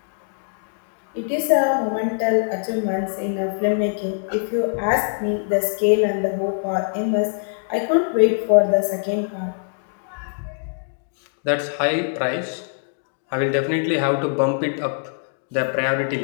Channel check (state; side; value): silent; right; digital silence